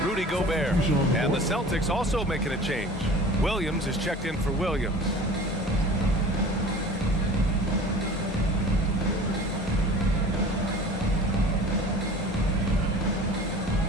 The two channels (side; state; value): both; normal; correlation 0.41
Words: Rudy Gobert. And the Celtics also making a change. Williams is checked in for Williams.